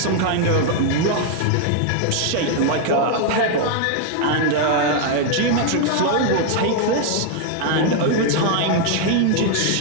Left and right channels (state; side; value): different; both; correlation 0.00